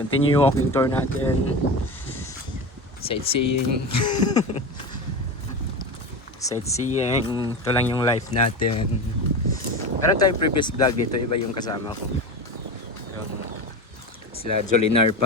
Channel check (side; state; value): both; normal; correlation 0.25